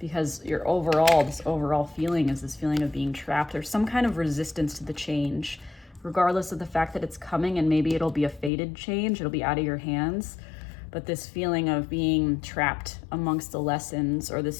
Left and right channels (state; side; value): drops out; right; at 8.5 s